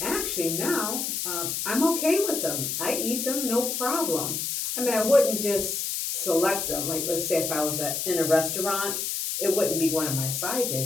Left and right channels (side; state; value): left; noise; hiss, 2 dB below the sound